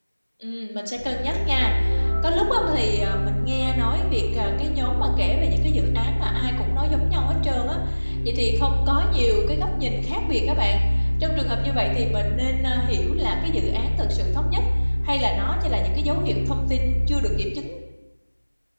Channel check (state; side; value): inverted; both; correlation -1.00